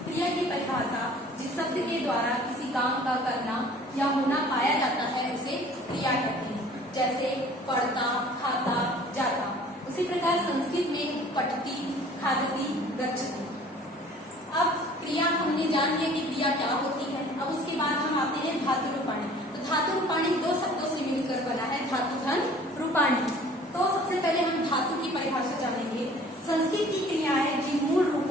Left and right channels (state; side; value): normal; both; correlation 0.50